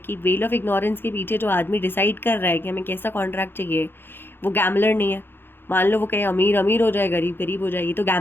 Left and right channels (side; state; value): right; late; 0.10 ms